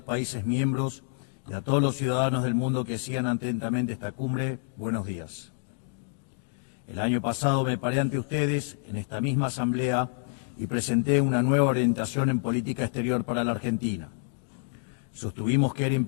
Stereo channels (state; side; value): silent; right; 59 dB below the other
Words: países miembros y a todos los ciudadanos del mundo que sigan atentamente esta cumbre, buenos días. El año pasado me paré ante ustedes en esta misma asamblea y presenté una nueva orientación en política exterior para la Argentina. Sostuvimos que era